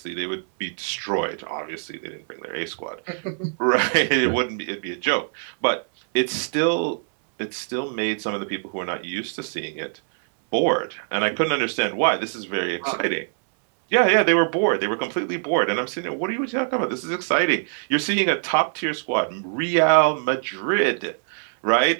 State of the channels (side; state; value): left; silent; 63 dB below the other